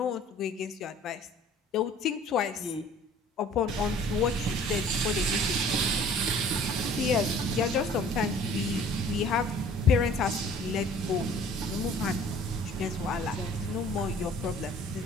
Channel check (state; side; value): normal; both; correlation 0.52